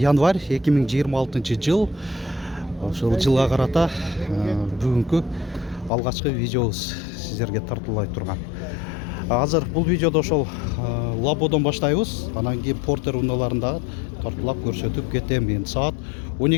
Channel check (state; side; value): drops out; right; at 5.9 s